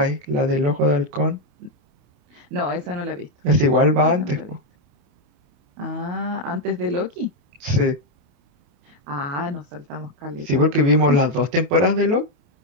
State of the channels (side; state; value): left; late; 28 ms